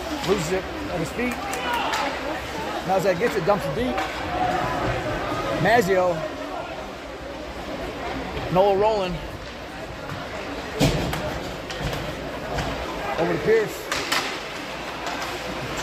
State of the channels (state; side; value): identical; both; correlation 1.00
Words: Loses it at his feet. Malzak gets it, dumps it deep. Mazzio. Noel rolling. Over to Pierce.